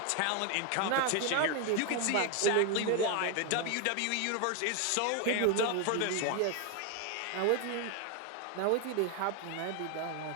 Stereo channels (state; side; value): different; both; correlation 0.01